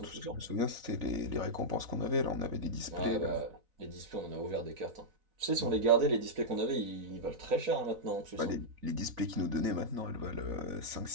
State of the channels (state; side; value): late; left; 4.0 ms